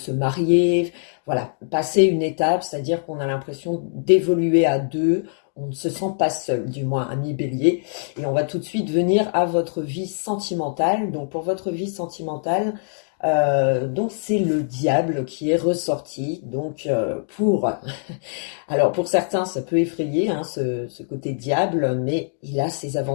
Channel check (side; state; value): right; silent; digital silence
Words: marier. Voilà, passer une étape, c'est-à-dire qu'on a l'impression d'évoluer à deux, on ne se sent pas seul, du moins ami bélier. Et on va tout de suite venir à votre vie sentimentale. Donc pour votre vie sentimentale, donc c'est le diable qui est ressorti. Donc alors pour certains ça peut effrayer ce côté diable, mais il a ses